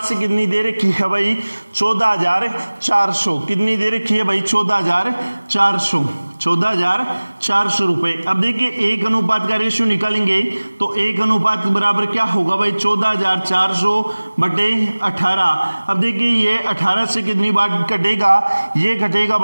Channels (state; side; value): inverted; both; correlation -1.00